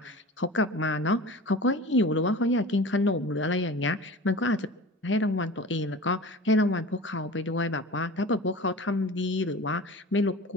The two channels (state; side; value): normal; both; correlation 0.37